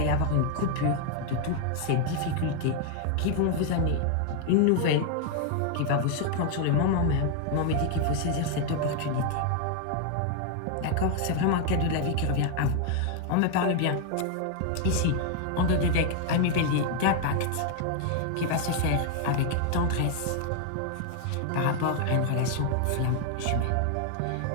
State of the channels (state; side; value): different; both; correlation 0.00